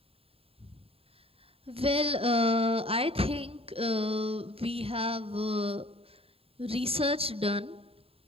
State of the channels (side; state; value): left; late; 0.28 ms